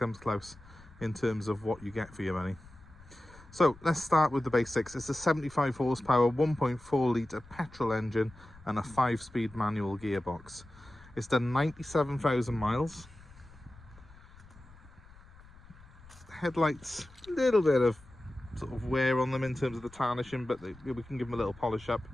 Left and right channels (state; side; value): noise; left; rumble, 22 dB below the sound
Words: close in terms of what you get for your money. So let's start with the basics. It's a 75 horsepower 1.4 litre petrol engine and a 5-speed manual gearbox. It's done 97,000 miles. Headlights, a little bit of sort of wear on them in terms of the tarnishing, but we can give them a little polish up.